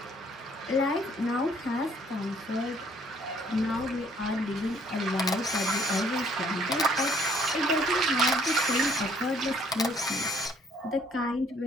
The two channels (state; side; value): normal; both; correlation 0.62